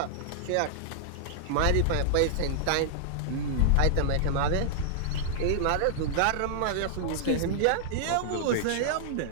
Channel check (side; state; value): both; different; correlation -0.01